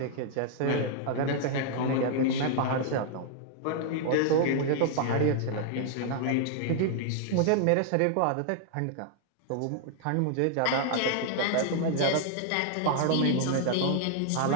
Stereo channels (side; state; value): both; different; correlation -0.01